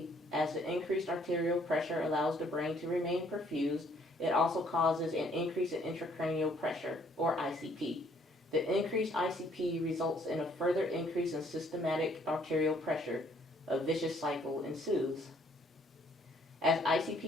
as the increased arterial pressure allows the brain to remain perfused, it also causes an increase in intracranial pressure, or ICP. The increased ICP results in a further increase in systemic arterial pressure. A vicious cycle ensues. As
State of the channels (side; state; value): both; normal; correlation 0.64